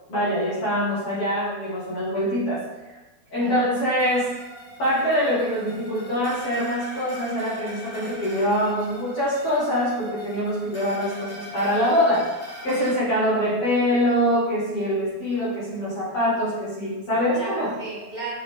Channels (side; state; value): right; late; 12 ms